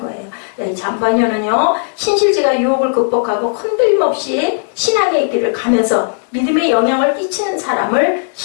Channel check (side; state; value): right; silent; 70 dB below the other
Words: 네, 잠반년은요, 신실지가 유혹을 극복하고 흔들림 없이 신앙의 길을 가면서 믿음에 영향을 끼치는 사람을